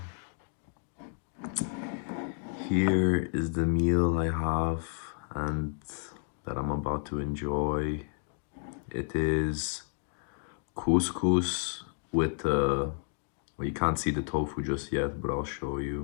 Here is the meal I have and that I'm about to enjoy. It is couscous with, well, you can't see the tofu just yet, but I'll show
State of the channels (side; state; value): right; silent; 55 dB below the other